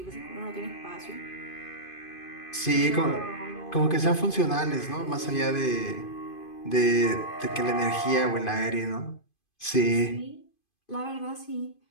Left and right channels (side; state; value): right; late; 2.5 ms